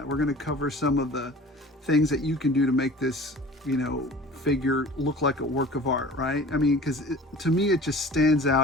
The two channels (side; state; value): both; normal; correlation 0.43